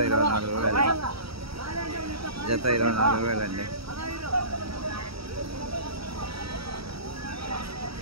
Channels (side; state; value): left; late; 0.76 ms